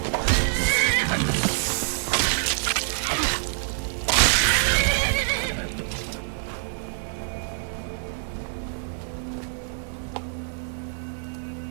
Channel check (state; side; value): silent; left; digital silence